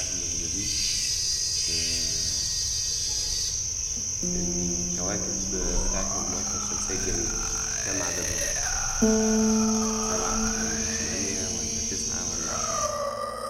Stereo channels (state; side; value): identical; both; correlation 1.00